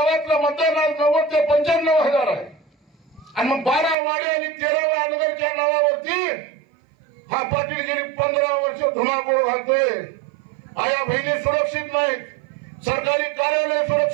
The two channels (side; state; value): left; drops out; at 4.0 s